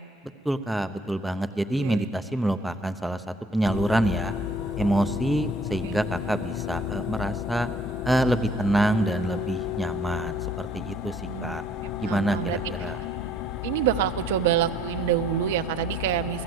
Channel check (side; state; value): both; normal; correlation 0.58